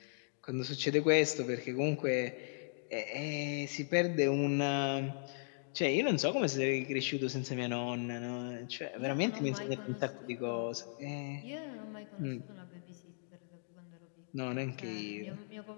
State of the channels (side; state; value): right; silent; digital silence